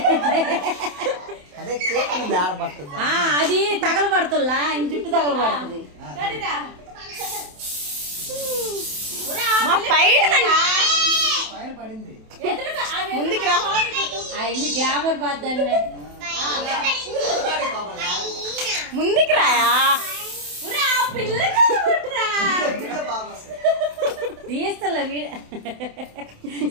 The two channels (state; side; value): late; left; 27 ms